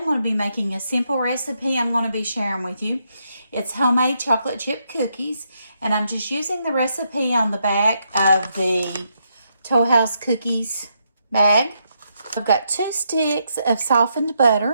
going to be making a simple recipe I'm going to be sharing with you. It's homemade chocolate chip cookies, and I'm just using the recipe on the back of the Toll House Cookies bag. I've got 2 sticks of softened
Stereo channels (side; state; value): both; inverted; correlation -0.79